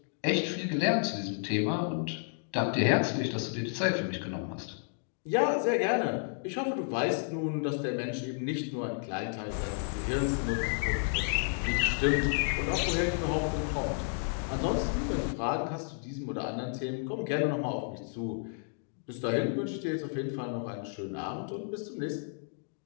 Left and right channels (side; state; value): right; silent; 57 dB below the other